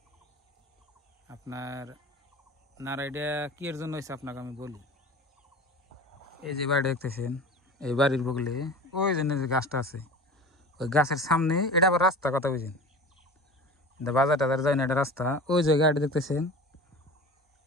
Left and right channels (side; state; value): both; normal; correlation 0.36